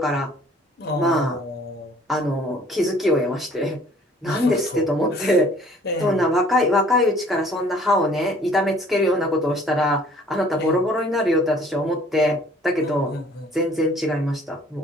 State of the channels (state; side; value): normal; both; correlation 0.55